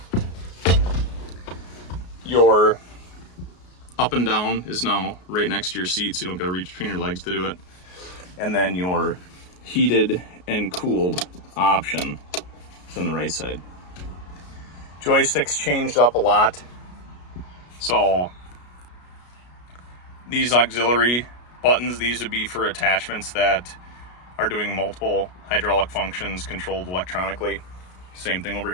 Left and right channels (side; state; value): right; late; 33 ms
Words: your up and down is now right next to your seat, so you don't gotta reach between your legs to do it. And then your heated and cooled option is on the right side. Joysticks changed up a lot. So these auxiliary buttons, these would be for attachments that are doing multiple hydraulic functions controlled electronically. Same thing over